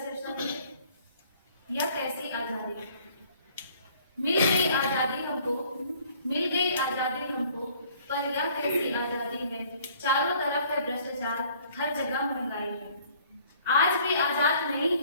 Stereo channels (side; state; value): both; inverted; correlation -0.57